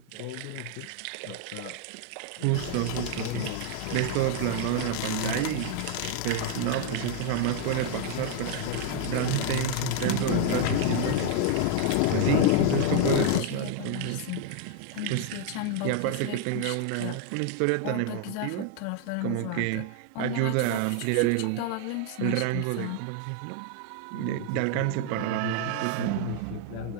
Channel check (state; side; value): different; both; correlation 0.00